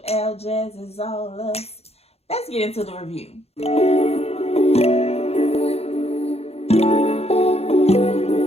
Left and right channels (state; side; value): late; right; 0.30 ms